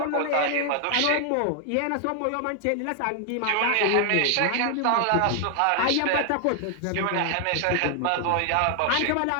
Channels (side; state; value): both; different; correlation 0.00